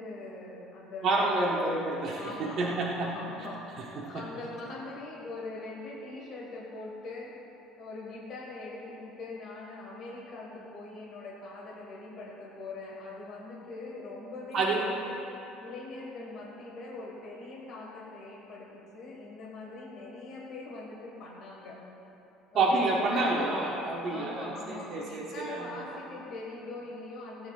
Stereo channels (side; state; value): both; normal; correlation 0.54